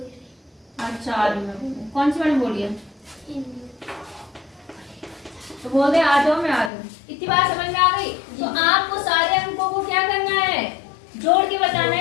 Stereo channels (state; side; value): drops out; right; at 6.7 s